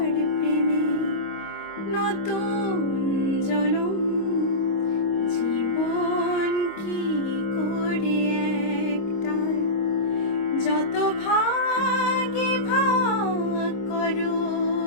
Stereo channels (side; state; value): right; late; 25 ms